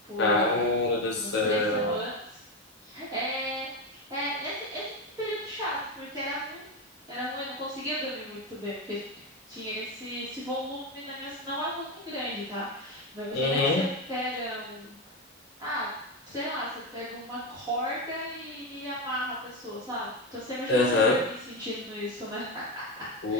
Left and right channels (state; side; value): normal; both; correlation 0.13